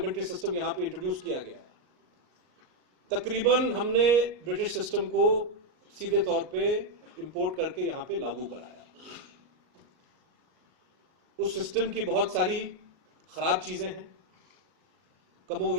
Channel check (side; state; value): left; late; 38 ms